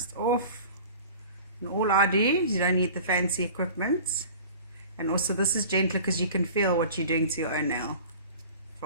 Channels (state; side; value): inverted; both; correlation -0.42